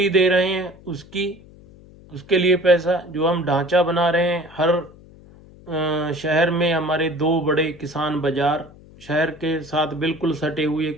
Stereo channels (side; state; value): left; noise; hum, 23 dB below the sound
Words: दे रहे हैं उसकी, उसके लिए पैसा, जो हम ढांचा बना रहे हैं, हर शहर में हमारे 2 बड़े किसान बाजार, शहर के साथ बिल्कुल सटे हुए,